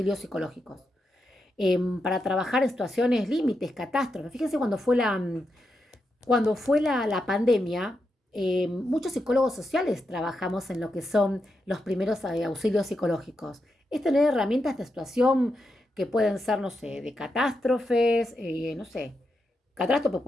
psicológicos. Para trabajar en situaciones límites, catástrofes. Fíjense cuando fue la pandemia, muchos psicólogos sociales trabajamos en lo que son los primeros auxilios psicológicos. Es tener herramientas de situación que pueden ser, no sé, de catástrofes, no sé, catástrofe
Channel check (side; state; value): both; normal; correlation 0.85